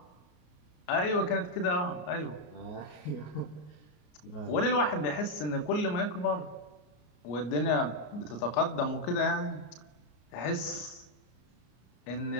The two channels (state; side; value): late; right; 33 ms